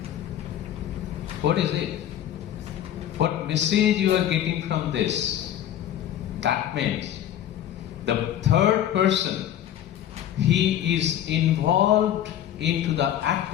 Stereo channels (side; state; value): right; quieter; 11.2 dB